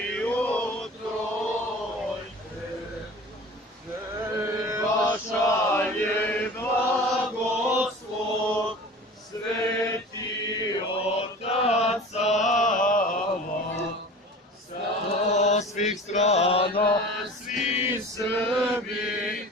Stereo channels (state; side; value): normal; both; correlation 0.39